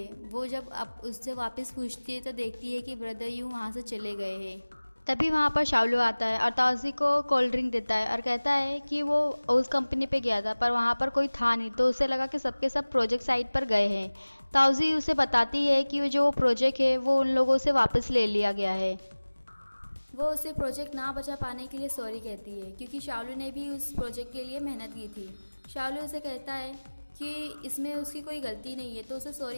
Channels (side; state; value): both; inverted; correlation -1.00